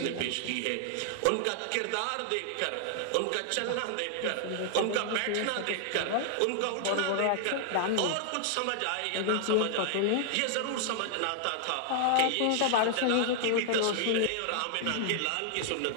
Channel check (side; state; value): both; different; correlation 0.00